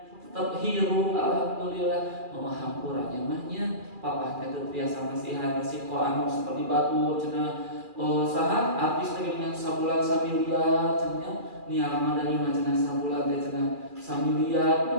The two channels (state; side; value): late; left; 2.4 ms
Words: tetep hirup alhamdulillah. Hampuranya mah nya papa teh teu biasa nasihat resiko anu seperti batu cenah saha artis teh dengan sabulan samiliar cenah niara dari mah cenah sabulan teh cenah samiliar.